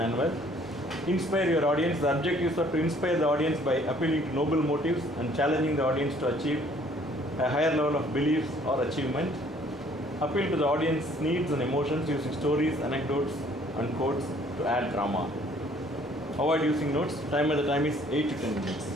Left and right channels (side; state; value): both; normal; correlation 0.59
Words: Inspire your audience. The objectives are to inspire the audience by appealing to noble motives and challenging the audience to achieve a higher level of beliefs or achievement. Appeal to the audience needs and emotions using stories, anecdotes and quotes to add drama. Avoid using notes. Time at the time is 8 to 10